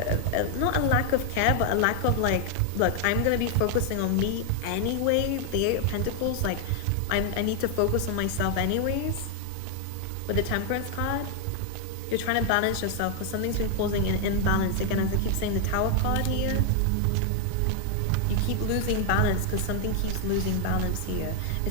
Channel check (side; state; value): both; different; correlation 0.00